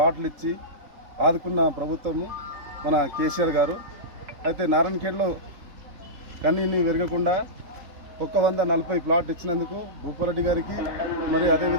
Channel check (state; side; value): late; left; 3.8 ms